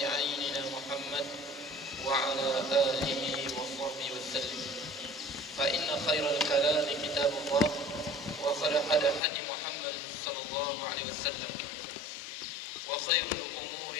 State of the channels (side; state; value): right; drops out; at 9.2 s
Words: عيننا محمد وعلى آله وصحبه وسلم. فإن خير الكلام كتاب الله، وخير هدي محمد صلى الله عليه وسلم، وخير الأمور